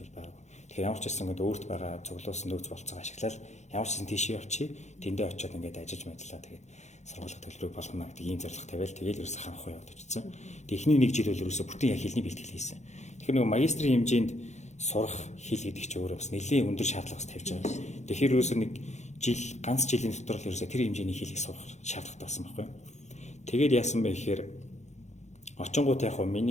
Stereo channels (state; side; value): late; right; 0.33 ms